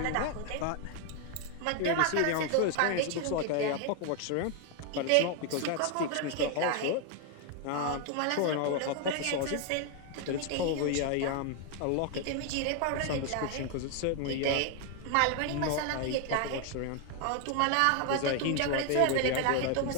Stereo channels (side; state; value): both; different; correlation 0.01